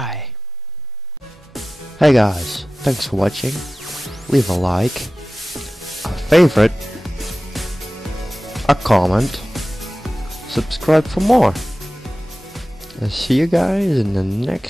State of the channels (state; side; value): normal; both; correlation 0.96